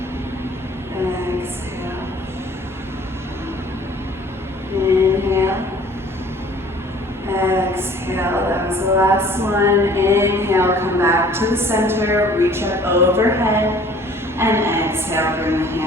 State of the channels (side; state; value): both; normal; correlation 0.51